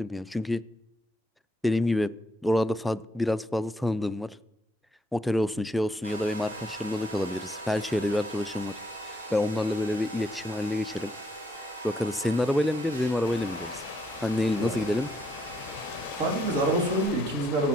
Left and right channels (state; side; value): normal; both; correlation 0.72